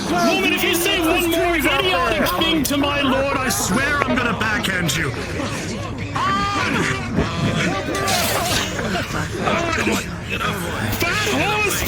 Woman, if you say one more idiotic thing to my lord, I swear I'm gonna backhand you. Fat horse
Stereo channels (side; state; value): both; identical; correlation 1.00